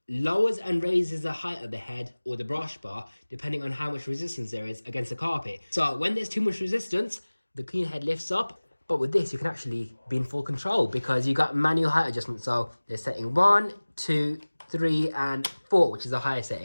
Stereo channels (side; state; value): both; inverted; correlation -1.00